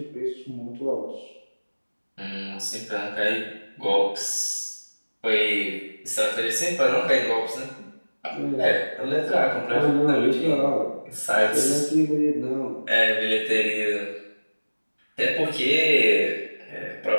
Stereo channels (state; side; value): inverted; both; correlation -1.00